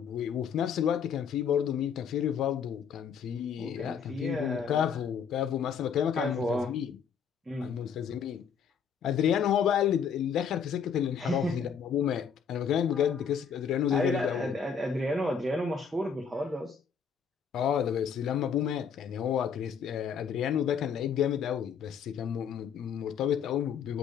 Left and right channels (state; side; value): quieter; right; 6.9 dB